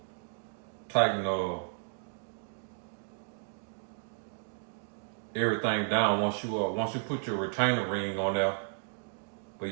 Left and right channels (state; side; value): silent; left; digital silence